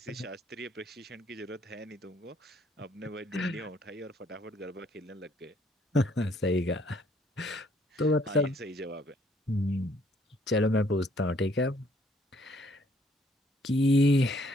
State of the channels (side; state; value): both; normal; correlation 0.64